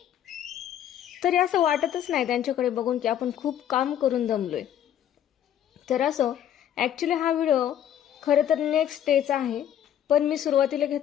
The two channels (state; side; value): quieter; right; 10.4 dB